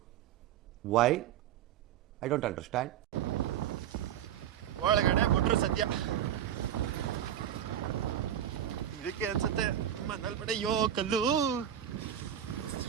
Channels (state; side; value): quieter; left; 10.2 dB